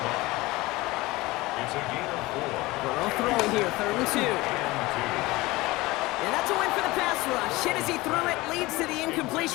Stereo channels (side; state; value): right; quieter; 20.7 dB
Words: It's a gain of 4. Burrow throwing here, 3rd and 2. And that's a win for the pass rush. Hit as he threw it, leads to the